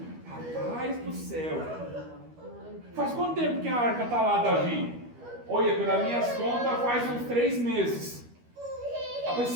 Rapaz do céu. Faz quanto tempo que a arca está lá, Davi? Olha, pelas minhas contas, faz uns 3 meses. Rapaz,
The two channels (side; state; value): left; late; 12 ms